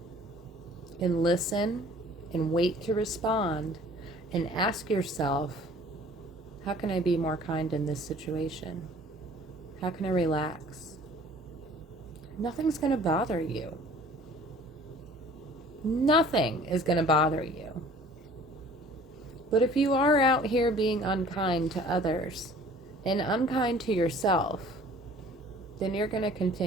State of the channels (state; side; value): normal; both; correlation 0.50